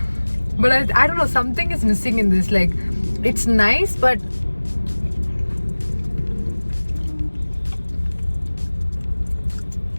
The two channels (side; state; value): both; inverted; correlation -1.00